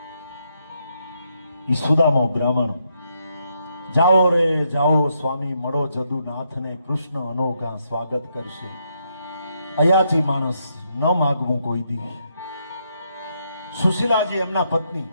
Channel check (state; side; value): inverted; both; correlation -0.78